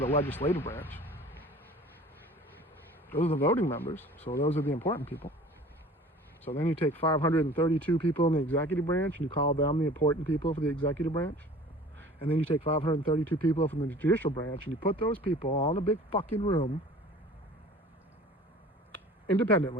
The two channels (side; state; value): both; normal; correlation 0.45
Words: legislative branch, those are the voting members, so those are the important people. So then you take 532 people in the executive branch and you call them the important people for the executive branch. And then you take 532 people from the judicial branch and you put those people all in a big fucking room,